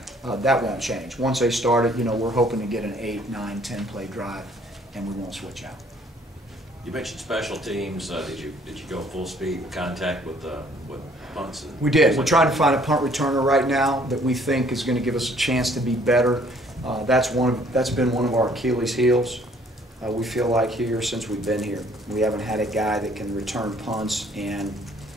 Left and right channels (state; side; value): normal; both; correlation 0.60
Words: that won't change. Once they start it, we're hoping to get an 8, 9, 10 play drive, and we won't switch out. You mentioned special teams. Did you go full speed contact with punts? We did. We're trying to find a punt returner right now that we think is gonna give us a chance to be better. That's been one of our Achilles heels. We feel like here, since we've been here, we haven't had a guy that can return punts and,